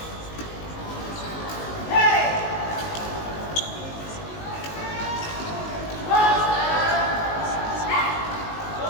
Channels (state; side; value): late; right; 19 ms